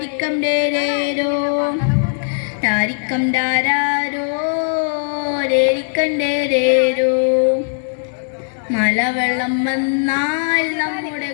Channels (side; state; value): right; silent; 67 dB below the other